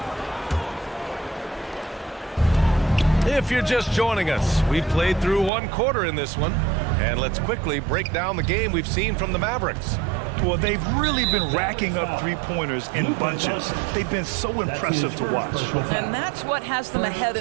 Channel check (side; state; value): left; drops out; at 5.5 s